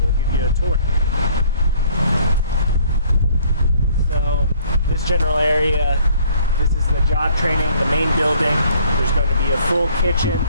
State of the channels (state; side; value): inverted; both; correlation -0.59